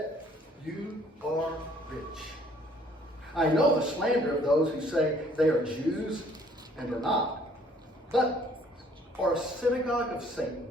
you are rich. I know the slander of those who say they are Jews and are not, but are a synagogue of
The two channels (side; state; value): both; normal; correlation 0.60